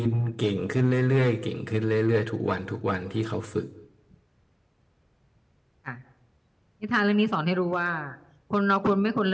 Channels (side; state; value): both; identical; correlation 1.00